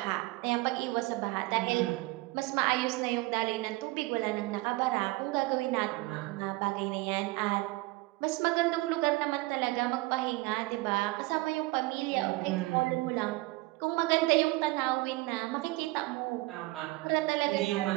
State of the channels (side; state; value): left; quieter; 21.9 dB